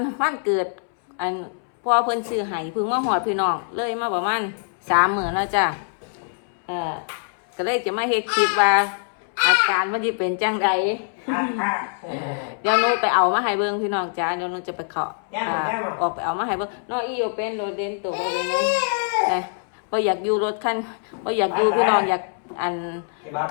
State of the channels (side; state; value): right; silent; 63 dB below the other